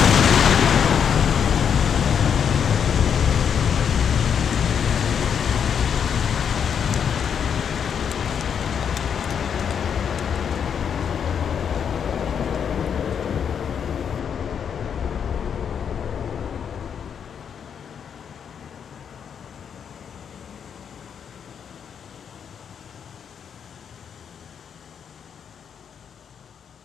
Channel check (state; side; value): quieter; right; 7.6 dB